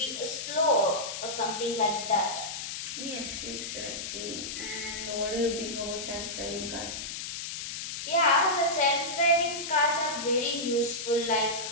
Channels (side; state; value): left; noise; hiss, 6 dB below the sound